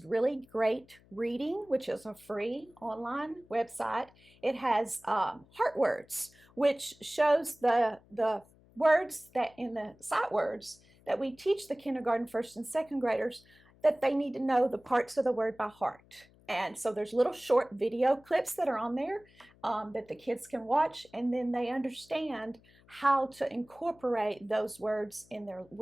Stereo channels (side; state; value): left; noise; hum, 28 dB below the sound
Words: Really Great Reading, which is a free online website. It has Heart Words, which shows the words that in the sight words that we teach the kindergarten, first and second graders, that they need to know the parts of the word by heart. And so there's little short video clips that are on there that the kids can watch, and then they understand how to incorporate those words